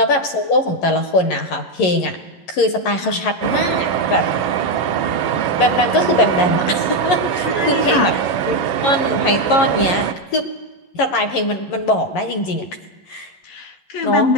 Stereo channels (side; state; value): right; late; 11 ms